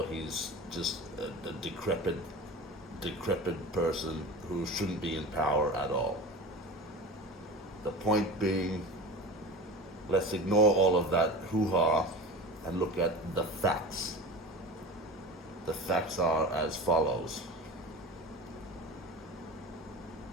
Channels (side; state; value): both; normal; correlation 0.33